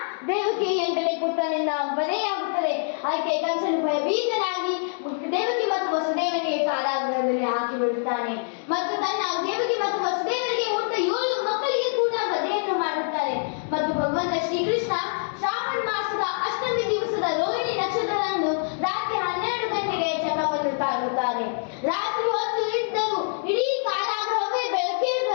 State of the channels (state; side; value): silent; right; digital silence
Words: ದೇವಕಿ ಎಂದರೆ ಪುತ್ರನಿಂದ ವಧೆಯಾಗುತ್ತದೆ. ಆಕೆ ಕಂಸನು ಭಯಭೀತನಾಗಿ ದೇವಕಿ ಮತ್ತು ವಸುದೇವನಿಗೆ ಕಾರಾಗೃಹದಲ್ಲಿ ಹಾಕಿ ಬಿಡುತ್ತಾನೆ ಮತ್ತು ತನ್ನ ದೇವಕಿ ಮತ್ತು ವಸುದೇವನಿಗೆ ಹುಟ್ಟ 7 ಮಕ್ಕಳಿಗೆ ಕೂಡ ವಧೆಯನ್ನು ಮಾಡುತ್ತಾರೆ. ಮತ್ತು ಭಗವಂತ ಶ್ರೀಕೃಷ್ಣ ಶ್ರಾವಣ ಮಾಸದ ಅಷ್ಟಮಿ ದಿವಸದ ರೋಹಿಣಿ ನಕ್ಷತ್ರದಂದು ರಾತ್ರಿ 12 ಗಂಟೆಗೆ ಚಕ್ರವನ್ನು ತಾಳುತ್ತಾರೆ. ರಾತ್ರಿ ಹೊತ್ತು ಇದ್ದರೂ ಇಡೀ ಕಾರಾಗೃಹವೇ